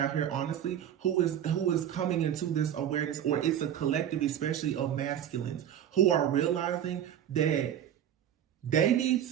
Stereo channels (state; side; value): quieter; left; 10.1 dB